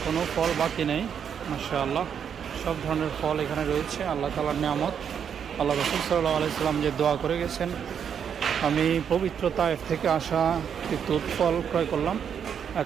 কোনো ফল বাকি নেই। মাশাআল্লাহ, সব ধরনের ফল এখানে রয়েছে। আল্লাহ তাআলার নিয়ামত। আল্লাহ রাসূল সাল্লাল্লাহু আলাইহি সাল্লাম যে দোয়া করে গেছেন, আমি পবিত্র তায়েফ থেকে আসা একটি তুত ফল ক্রয় করলাম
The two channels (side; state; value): left; quieter; 7.8 dB